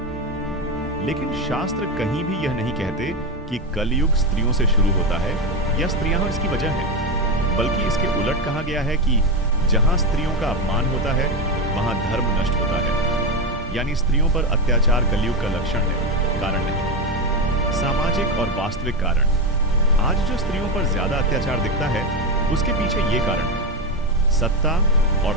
लेकिन शास्त्र कहीं भी यह नहीं कहते कि कलयुग स्त्रियों से शुरू होता है या स्त्रियां इसकी वजह है, बल्कि इसके उलट कहा गया है कि जहां स्त्रियों का अपमान होता है वहां धर्म नष्ट होता है। यानी स्त्रियों पर अत्याचार कलयुग का लक्षण है, कारण नहीं। सामाजिक और वास्तविक कारण। आज जो स्त्रियों पर ज्यादा अत्याचार दिखता है उसके पीछे ये कारण है: सत्ता और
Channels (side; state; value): both; normal; correlation 0.12